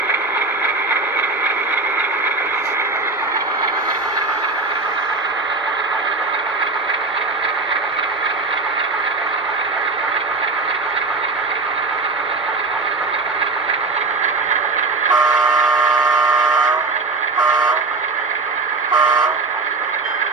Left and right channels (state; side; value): quieter; left; 3.8 dB